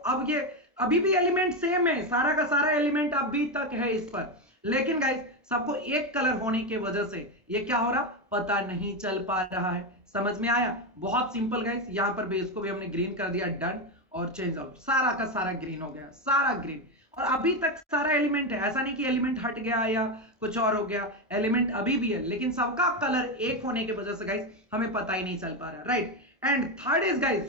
ये अभी भी एलिमेंट सेम है, सारा का सारा एलिमेंट अभी तक है इस पर, लेकिन गाइस सबको एक कलर होने की वजह से ये क्या हो रहा, पता नहीं चल पा रहा है। समझ में आया? बहुत सिंपल गाइस, यहां पर बेस को भी हमने ग्रीन कर दिया, डन, और चेंज आउट, सारा का सारा ग्रीन हो गया, सारा ग्रीन। और अभी तक सारा एलिमेंट है, ऐसा नहीं कि एलिमेंट हट गया या कुछ और हो गया, एलिमेंट अभी भी है, लेकिन सबका कलर एक होने की वजह से गाइस हमें पता ही नहीं चल पा रहा, right. And third is guys,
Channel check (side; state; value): both; normal; correlation 0.11